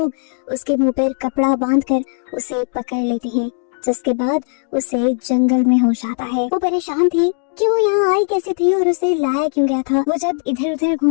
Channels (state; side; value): silent; right; 59 dB below the other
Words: उसके मुंह पर कपड़ा बांधकर उसे पकड़ लेते हैं, जिसके बाद उसे जंगल में होश आता है। वो परेशान थी कि वो यहाँ आई कैसे थी और उसे लाया क्यों गया था। वो जब इधर उधर